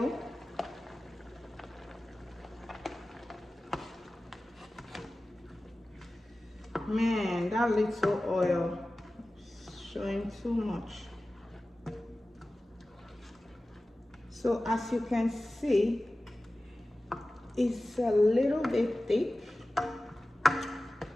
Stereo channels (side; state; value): both; normal; correlation 0.96